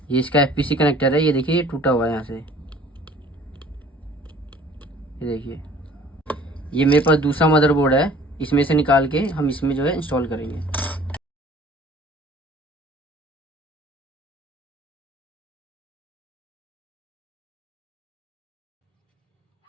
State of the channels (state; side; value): normal; both; correlation 0.51